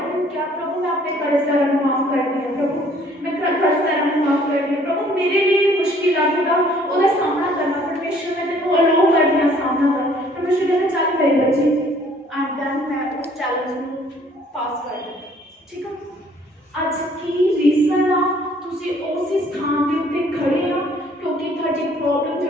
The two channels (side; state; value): both; normal; correlation 0.59